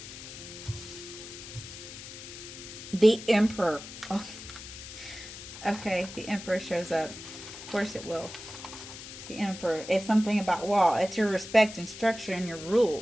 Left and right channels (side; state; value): left; noise; hiss, 13 dB below the sound